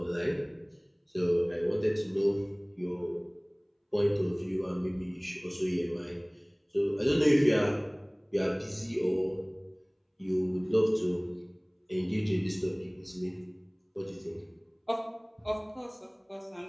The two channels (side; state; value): both; identical; correlation 1.00